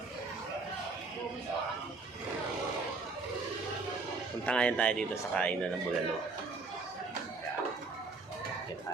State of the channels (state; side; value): quieter; left; 3.9 dB